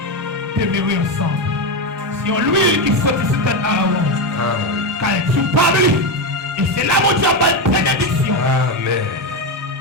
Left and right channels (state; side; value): normal; both; correlation 0.11